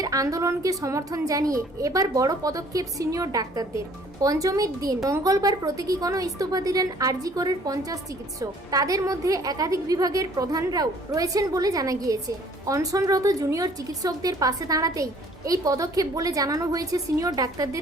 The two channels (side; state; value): both; normal; correlation 0.57